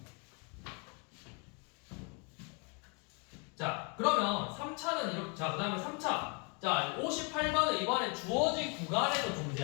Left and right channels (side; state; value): right; quieter; 34.4 dB